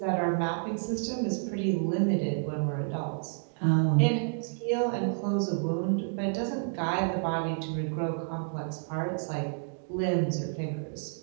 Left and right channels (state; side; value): silent; left; digital silence